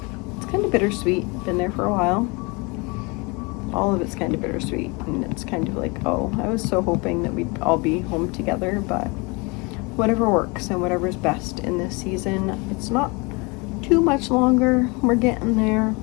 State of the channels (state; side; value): quieter; right; 28.3 dB